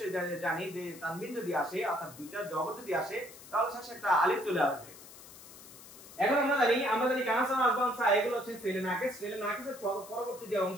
জানি যে তানবিন যদি আসে অর্থাৎ দুইটা জবর যদি আসে তাহলে শেষে একটা আলিফ চলে আসবে। এখন আমরা জানি কানা সানা আসবান সা এগুলো হচ্ছে ফেলে নাকিস। ফেলে নাকিসের পরবর্তী যে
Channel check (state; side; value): noise; left; hiss, 18 dB below the sound